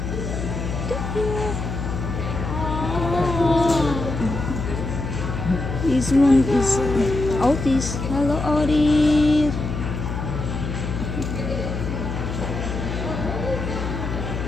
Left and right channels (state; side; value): noise; left; hum, 4 dB below the sound